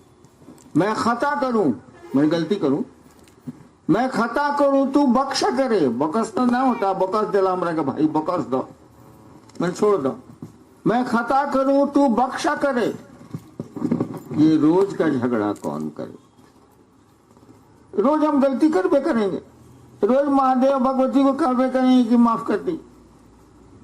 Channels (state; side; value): identical; both; correlation 1.00